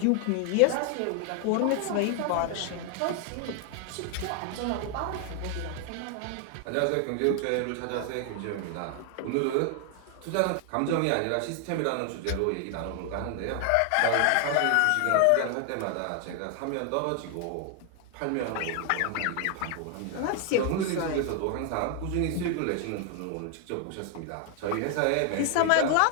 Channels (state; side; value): different; both; correlation 0.00